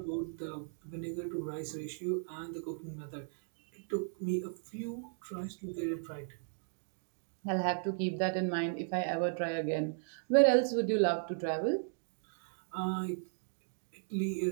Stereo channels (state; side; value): silent; left; digital silence